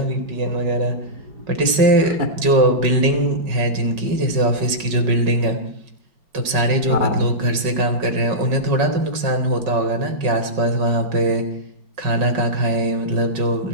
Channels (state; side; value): late; left; 5.4 ms